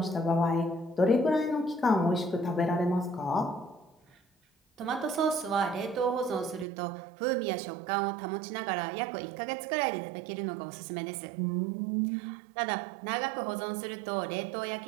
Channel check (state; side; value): drops out; left; at 6.7 s